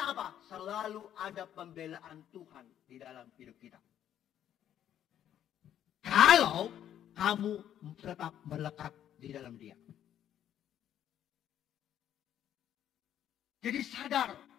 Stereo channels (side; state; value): right; quieter; 10.6 dB